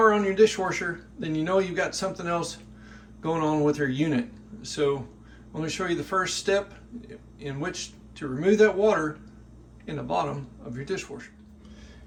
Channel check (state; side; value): identical; both; correlation 1.00